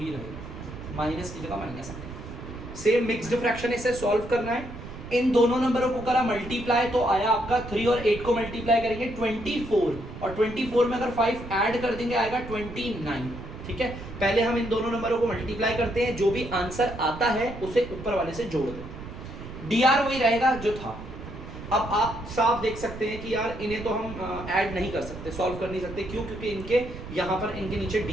रहेगा, माइनस की जगह माइनस आएगा। सेम मिक्स्ड फ्रैक्शन इसे सॉल्व करना है। इन दोनों नंबरों को करा मल्टीप्लाई तो आया आपका 3 और 8 को मल्टीप्लाई करेंगे 24, और 24 में अगर 5 ऐड कर देंगे आएगा 29। ठीक है, पहले हम इन दोनों नंबरों को मल्टीप्लाई करते हैं, जो भी आंसर आता है उसे ऊपर वाले से जोड़ दें। डीआर वही रहेगा जो था। अब आप साफ देख सकते हैं कि यार इन्हें तो हम ऐड नहीं कर सकते, सॉल्व कर नहीं सकते, क्यों? क्योंकि इनके यहाँ पर इनके नीचे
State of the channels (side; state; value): right; noise; rumble, 12 dB below the sound